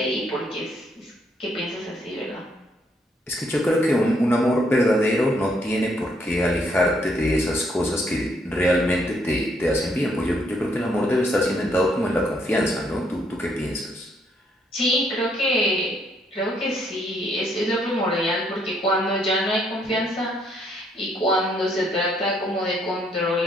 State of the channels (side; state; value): both; normal; correlation 0.71